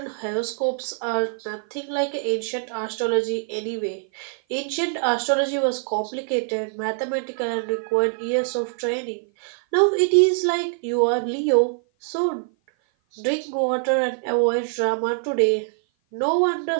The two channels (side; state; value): left; silent; 56 dB below the other